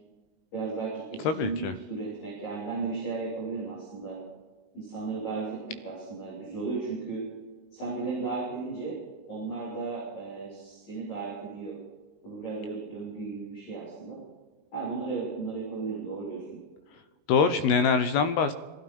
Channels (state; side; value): late; right; 19 ms